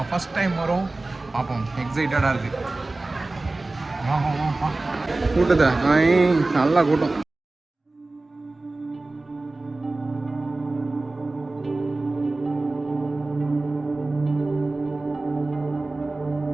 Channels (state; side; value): quieter; left; 3.1 dB